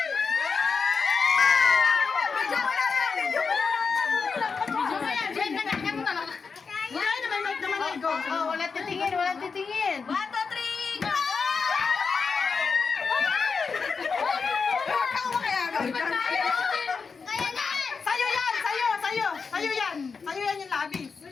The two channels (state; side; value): quieter; right; 5.2 dB